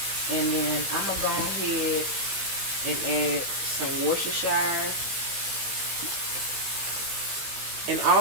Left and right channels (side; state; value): left; late; 15 ms